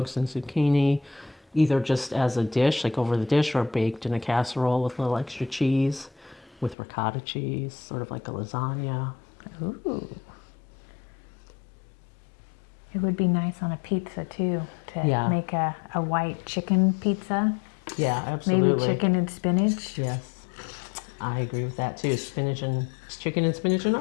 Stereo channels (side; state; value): right; drops out; at 6.8 s